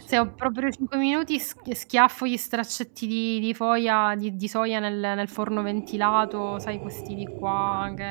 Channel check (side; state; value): left; silent; 61 dB below the other